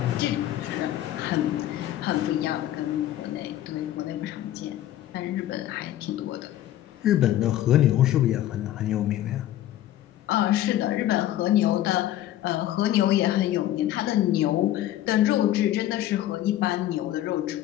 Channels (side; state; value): right; quieter; 13.2 dB